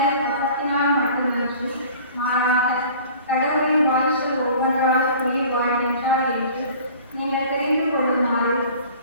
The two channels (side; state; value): both; inverted; correlation -0.46